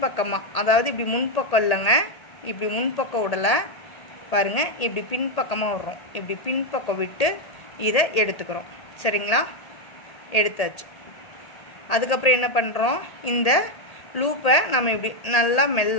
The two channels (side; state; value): right; late; 1.8 ms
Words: அதாவது இப்படி முன்பக்கம் இல்லைங்க, இப்படி முன்பக்கம் விடலை பாருங்கள், இப்படி பின்பக்கமாக விடுறோம். இப்படி பின்பக்கம் விட்டு இதை எடுத்துக்கிறோம். சரிங்களா? எடுத்தாச்சு. அதுக்கப்புறம் என்ன பண்ணுறோம், இந்த லூப்பை நம்ம இப்படி நல்லா